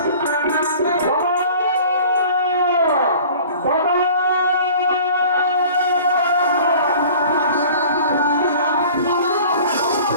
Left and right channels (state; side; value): inverted; both; correlation -0.46